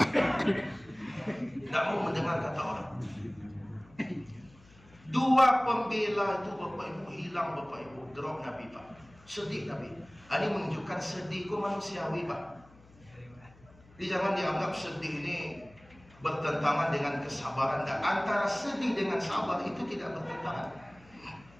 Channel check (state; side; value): noise; left; hum, 25 dB below the sound